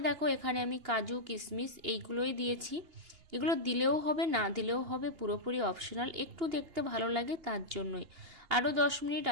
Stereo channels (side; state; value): left; late; 2.8 ms